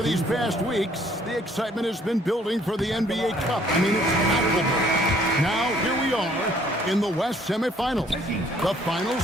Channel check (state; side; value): normal; both; correlation 0.61